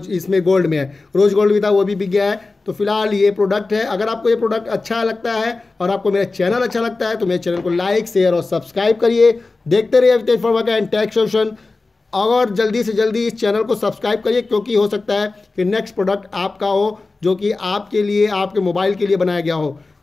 इसमें गोल्ड में है। रोज गोल्ड भी था, वो भी बिक गया है। तो फिलहाल ये प्रोडक्ट है। अगर आपको ये प्रोडक्ट अच्छा लगता है और आपको मेरा चैनल अच्छा लगता है तो मेरे चैनल को लाइक, शेयर और सब्सक्राइब करिए। देखते रहिए अवितेज फंवर्क्स&टेक सोल्यूशन। और जल्दी से जल्दी इस चैनल को सब्सक्राइब करिए, क्योंकि हो सकता है कि नेक्स्ट प्रोडक्ट आपका हो जो कि आपके लिए, आपके मोबाइल के लिए बनाया गया हो।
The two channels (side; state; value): right; quieter; 3.6 dB